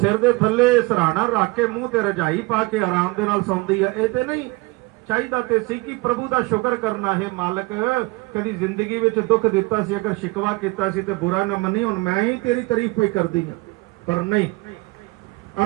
दे थल्ले सराहना रख के मूंह ते रजाई पा के आराम दे नाल सौंदी है। ये ते नहीं चाहिदा ते सी कि प्रभु दा शुक्र करना है, मालक कदी जिंदगी विच दुख दिता सी, अगर शिकवा कीता सी ते बुरा ना मनी, हुण मैं ही तेरी तारीफ पे करदी हां। पर नहीं,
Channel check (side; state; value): left; quieter; 24.1 dB